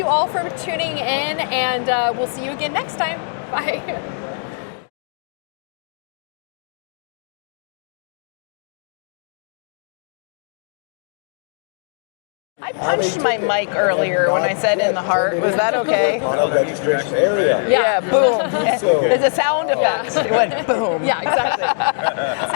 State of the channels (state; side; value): silent; right; digital silence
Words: all for tuning in, and we'll see you again next time. Bye. I punched my mic earlier when I said in the heart. Was that okay? Registration area. Yeah, boom. There's a sound effect. It went boom. Yeah, exactly.